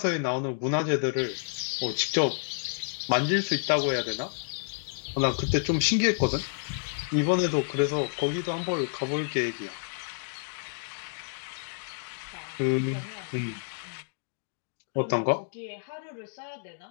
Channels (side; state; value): right; silent; digital silence